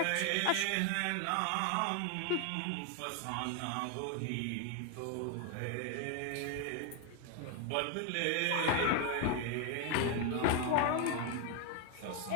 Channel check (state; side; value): different; both; correlation 0.01